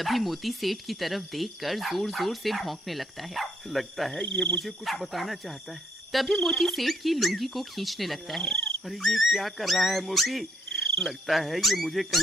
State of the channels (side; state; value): both; normal; correlation 0.71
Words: मोती सेठ की तरफ देखकर जोर जोर से भौंकने लगता है। लगता है ये मुझे कुछ बताना चाहता है। तभी मोती सेठ की लुंगी को खींचने लगता है। अरे ये क्या कर रहा है मोती? लगता है ये मुझे